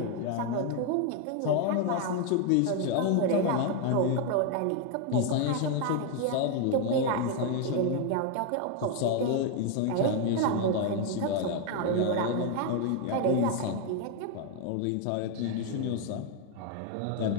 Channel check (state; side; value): different; both; correlation 0.01